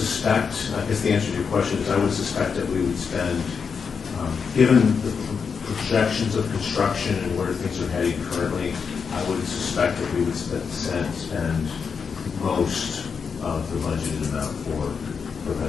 I guess the answer to your question is I would suspect that we would spend, given the projections of construction and where things are heading currently, I would suspect that we would spend most of the budgeted amount for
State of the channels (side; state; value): right; quieter; 5.9 dB